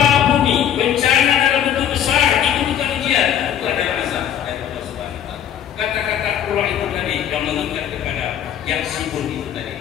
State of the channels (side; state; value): right; quieter; 9.8 dB